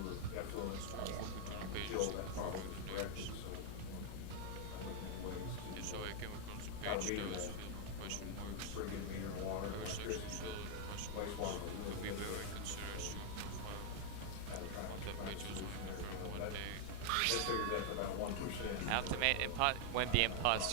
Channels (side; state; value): both; different; correlation 0.00